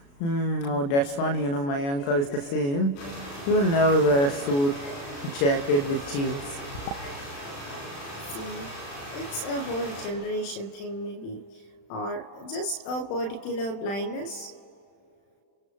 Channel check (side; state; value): right; late; 36 ms